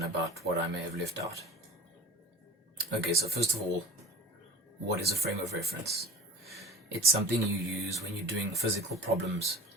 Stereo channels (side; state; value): both; normal; correlation 0.41